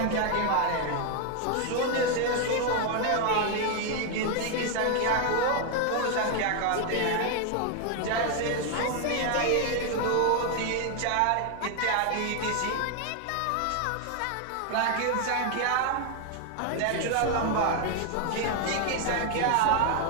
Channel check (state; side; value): different; both; correlation 0.01